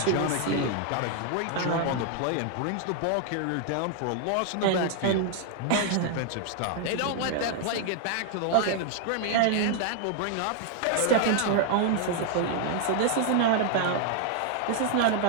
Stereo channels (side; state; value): both; different; correlation 0.00